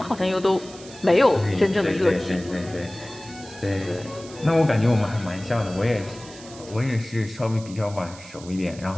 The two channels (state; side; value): noise; right; hiss, 18 dB below the sound